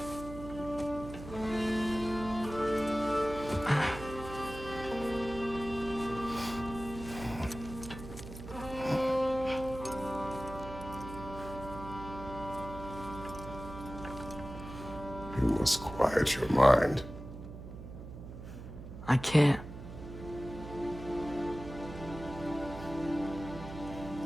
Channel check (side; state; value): right; noise; hum, 11 dB below the sound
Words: You must quiet your mind. I can't.